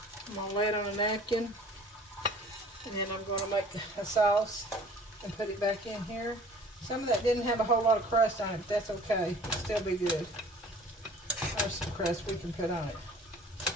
I'm going to lay it on a napkin, and then I'm going to make a sauce and put it back in here. Some of that didn't have a whole lot of crust on it, but that's okay. It'll still be good. There's some crust we can put on it.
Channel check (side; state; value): both; normal; correlation 0.50